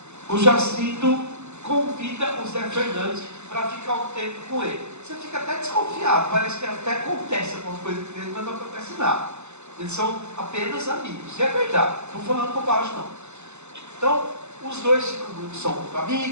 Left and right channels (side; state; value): left; late; 0.82 ms